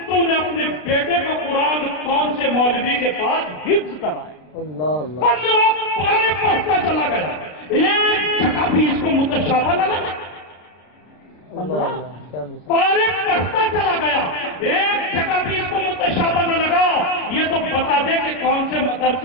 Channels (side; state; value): right; late; 33 ms